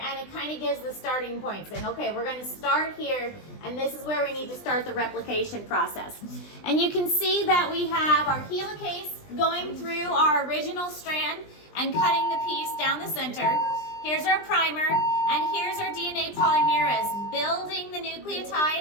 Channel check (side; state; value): right; late; 20 ms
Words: it kind of gives the starting point, saying, okay, we're going to start here, and this is where we need to start the replication process. And you can see that we have our helicase going through our original strand and cutting the piece down the center. Here's our primer, and here's our DNA polymerase building the